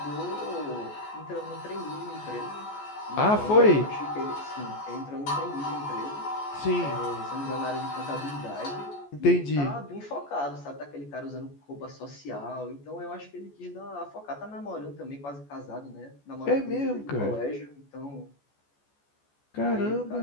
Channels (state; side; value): late; right; 14 ms